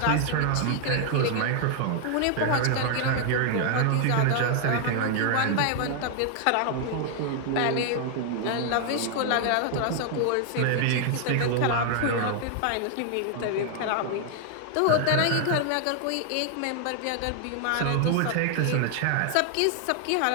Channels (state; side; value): different; both; correlation 0.00